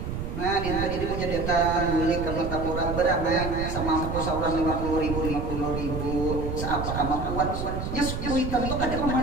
Nah dia tadi punya data beli kalau tapora berapa sama aku seorang 50.000 seapa kemampuan nya kuitan itu kadang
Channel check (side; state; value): right; noise; rumble, 4 dB below the sound